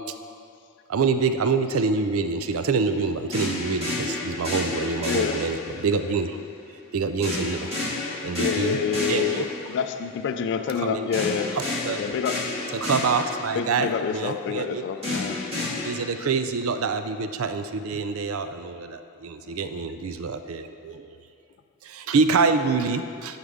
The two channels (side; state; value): both; normal; correlation 0.06